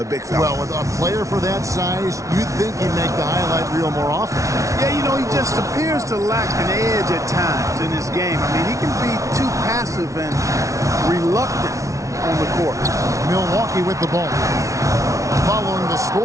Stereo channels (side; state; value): left; late; 0.15 ms